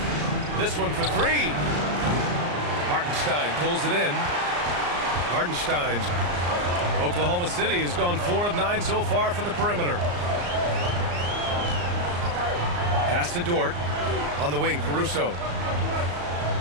This one for 3. Hartenstein pulls it in. Hartenstein's Oklahoma City has gone 4 of 9 so far from the perimeter. Pass to Dort. On the wing, Caruso.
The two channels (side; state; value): left; late; 34 ms